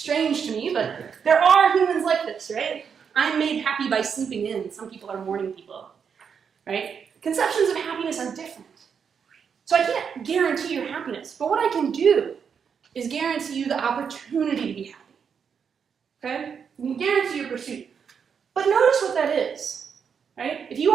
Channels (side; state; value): left; quieter; 6.8 dB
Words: to me, but there are humans like this, right? I'm made happy by sleeping in. Some people are morning people, right? Conceptions of happiness are different. So I can't guarantee your happiness, but what I can do is guarantee you the opportunity to be happy. Okay? You can guarantee your pursuit. But notice what that is, right? If you